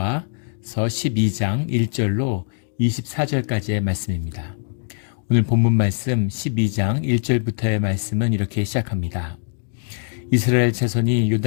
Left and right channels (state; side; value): silent; right; 64 dB below the other